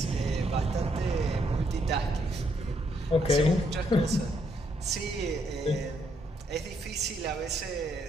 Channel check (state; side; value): normal; both; correlation 0.74